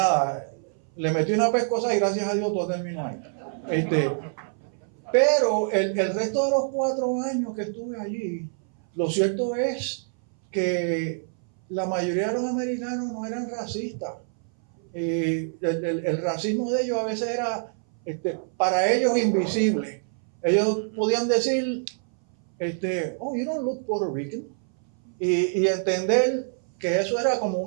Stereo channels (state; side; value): silent; left; 59 dB below the other